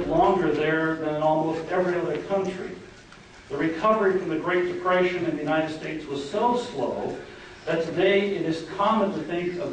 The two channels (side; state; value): both; identical; correlation 1.00